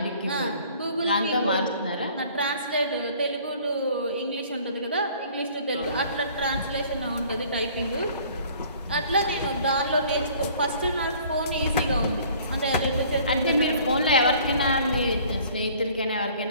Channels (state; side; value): inverted; both; correlation -0.53